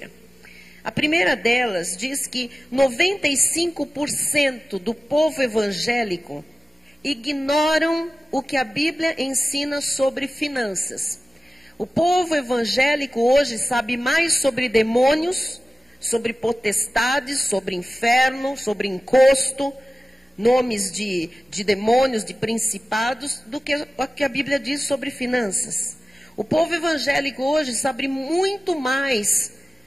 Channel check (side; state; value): both; normal; correlation 0.96